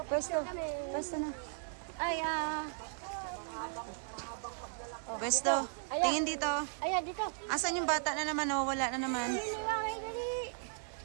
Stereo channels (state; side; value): silent; left; digital silence